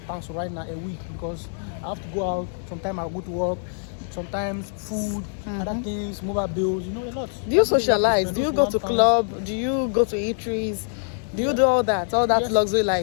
right now a week, because I have to go out. Sometimes I go to work. Sometimes food, other things, mobile bills, a lot. Do you socialize? Do you go to club? Do you go to eateries? Do you do all that yes, luxury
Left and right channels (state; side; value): silent; right; 60 dB below the other